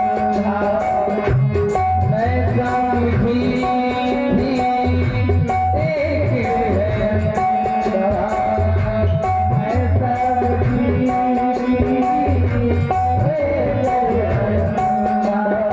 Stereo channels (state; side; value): identical; both; correlation 1.00